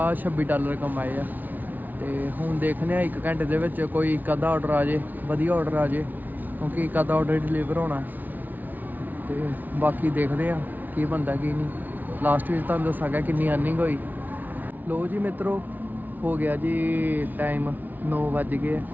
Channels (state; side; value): late; left; 0.082 ms